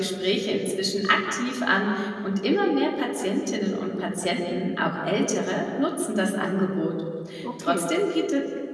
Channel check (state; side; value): identical; both; correlation 1.00